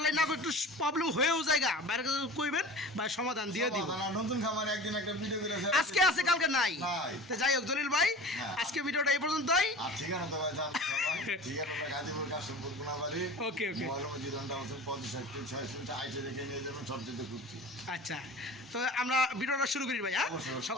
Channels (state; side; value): normal; both; correlation 0.37